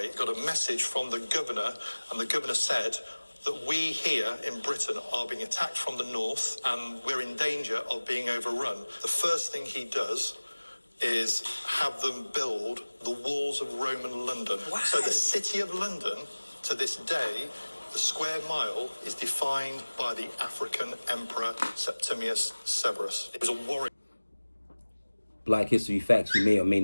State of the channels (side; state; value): both; inverted; correlation -1.00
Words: got a message from the governor, and the governor said that we here in Britain are being attacked from the north and we're in danger of being overrun. The first thing he does is have them build the walls of Roman London. Wow. So the city of London, to this day, the square mile is defined by the African emperor Septimius Severus. It was a warrior. Black history facts you may or may